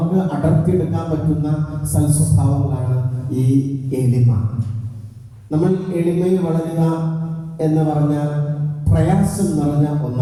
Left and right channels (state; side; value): identical; both; correlation 1.00